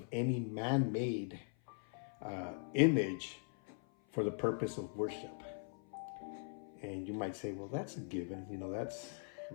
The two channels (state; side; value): silent; right; 51 dB below the other